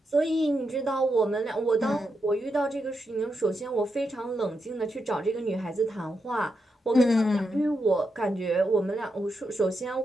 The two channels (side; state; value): both; normal; correlation 0.84